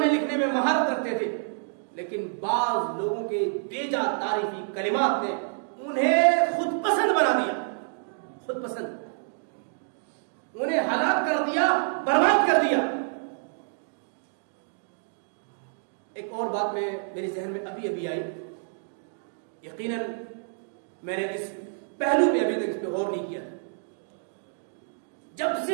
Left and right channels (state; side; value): silent; left; digital silence